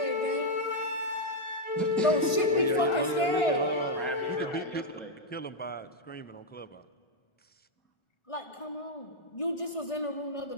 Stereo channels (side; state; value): right; late; 1.5 ms